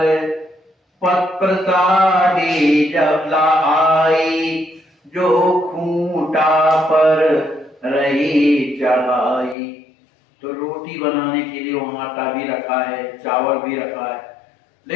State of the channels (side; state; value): right; drops out; at 9.6 s